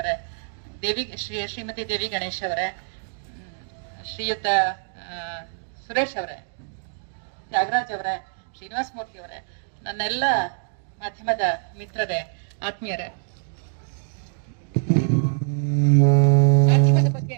ಶ್ರೀಮತಿ ದೇವಿ ಗಣೇಶ್ ಅವರೇ, ಶ್ರೀಯುತ ಸುರೇಶ್ ಅವರೇ, ತ್ಯಾಗರಾಜ್ ಅವರೇ, ಶ್ರೀನಿವಾಸ್ ಮೂರ್ತಿ ಅವರೇ, ನನ್ನೆಲ್ಲ ಮಾಧ್ಯಮದ ಮಿತ್ರರೇ, ಆತ್ಮೀಯರೇ, ಮಾಧ್ಯಮದ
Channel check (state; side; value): silent; left; digital silence